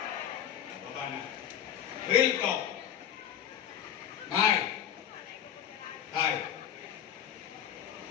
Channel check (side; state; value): right; quieter; 9.8 dB